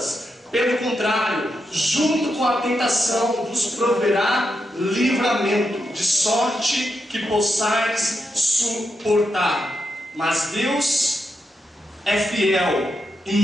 Pelo contrário, junto com a tentação vos proverá livramento, de sorte que possais suportar. Mas Deus é fiel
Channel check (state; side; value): normal; both; correlation 0.85